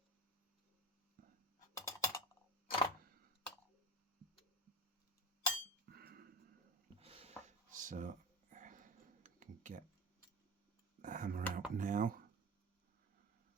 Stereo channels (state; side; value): normal; both; correlation 0.28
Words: So I can get the hammer out now.